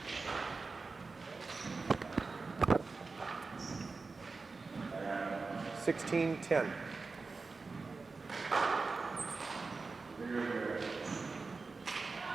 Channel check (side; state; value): left; quieter; 4.1 dB